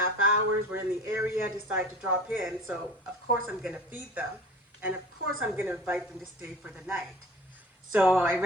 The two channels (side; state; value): both; normal; correlation 0.40